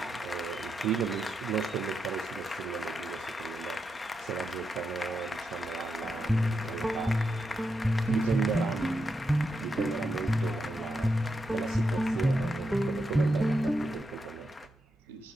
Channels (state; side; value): normal; both; correlation 0.84